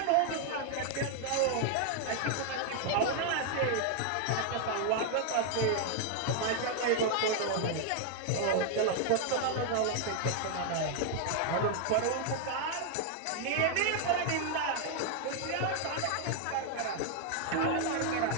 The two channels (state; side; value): different; both; correlation 0.00